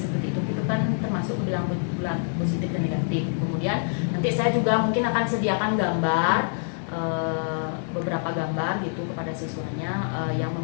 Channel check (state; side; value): silent; right; 61 dB below the other